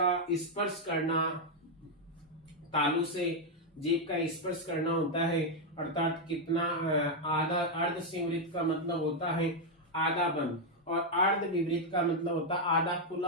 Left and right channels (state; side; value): normal; both; correlation 0.01